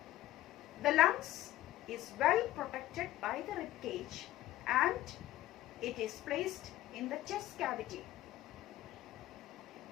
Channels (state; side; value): quieter; right; 15.2 dB